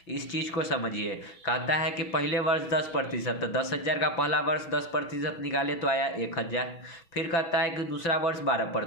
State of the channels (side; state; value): right; late; 6.1 ms